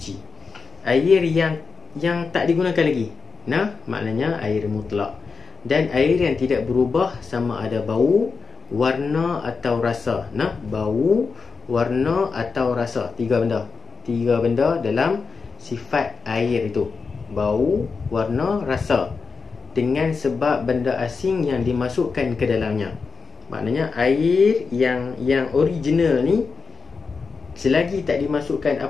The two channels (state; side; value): quieter; right; 5.0 dB